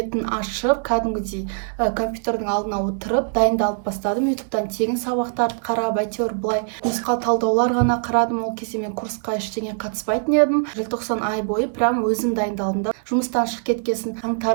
ашып, кәдімгідей компьютердің алдына отырып дайындалып бастадым. ютубтан тегін сабақтарды қарап, әйтеуір былай нұсқау талдаулар ғана қарадым. Ол кезде мен курсқа ештеңе қатыспайтын едім. Желтоқсан ай бойы прям өзім дайындалдым да. Жұмыстан шығып кеткесін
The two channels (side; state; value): left; silent; 64 dB below the other